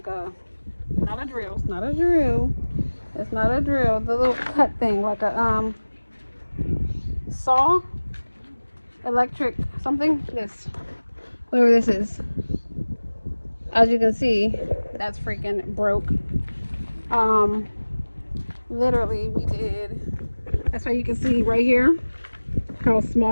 not a drill. It's not a drill. It's not a drill. The little cut thing, like a saw, electric something. This, whatever this is. As you can see, that's freaking broke. Literally, we did. That's why you can see right here how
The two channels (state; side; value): inverted; both; correlation -1.00